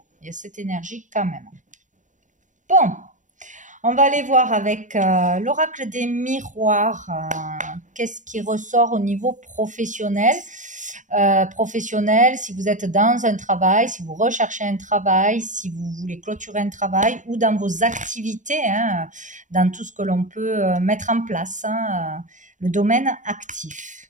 il y a cette énergie quand même. Bon. On va aller voir avec l'oracle des miroirs, qu'est-ce qui ressort au niveau professionnel. Professionnel, si vous êtes dans un travail, si vous recherchez un travail, si vous voulez clôturer un travail ou dans vos activités, dans tout ce que l'on peut mettre en place, le domaine actif.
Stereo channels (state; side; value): late; left; 0.37 ms